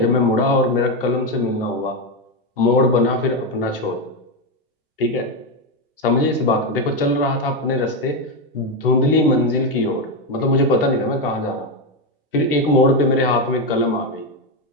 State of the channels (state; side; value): normal; both; correlation 0.09